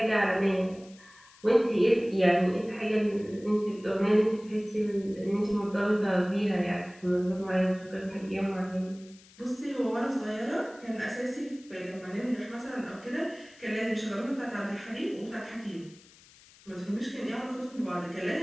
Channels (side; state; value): left; noise; hiss, 25 dB below the sound